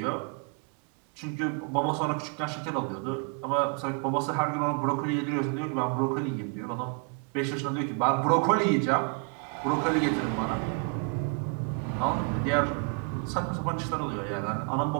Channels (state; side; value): quieter; left; 37.1 dB